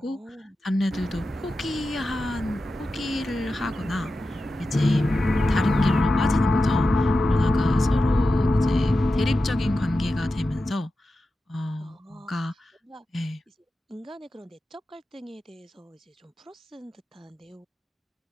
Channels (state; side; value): normal; both; correlation 0.92